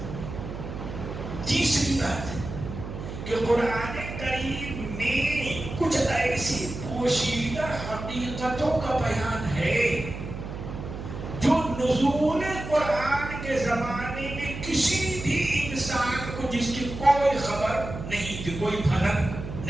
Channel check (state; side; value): noise; right; hum, 8 dB below the sound